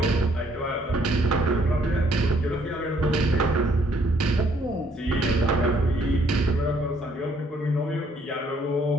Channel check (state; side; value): normal; both; correlation 0.66